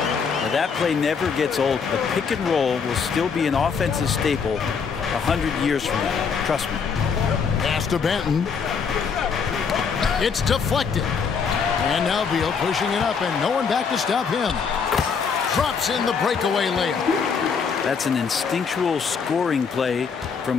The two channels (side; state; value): right; quieter; 6.0 dB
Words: that play never gets old. The pick and roll will still be an offensive staple 100 years from now. Trust me. Pass to Banton. It's deflected. And now Beal pushing it up, and no one back to stop him. Drops in the breakaway layup. That's an instinctual scoring play